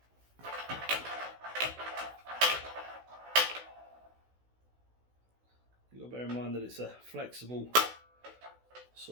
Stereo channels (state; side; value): late; left; 16 ms